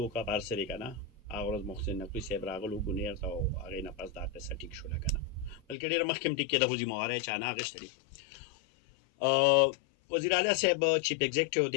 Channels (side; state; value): right; drops out; at 5.8 s